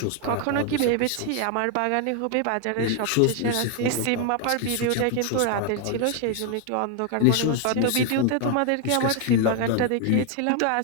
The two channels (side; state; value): both; different; correlation 0.01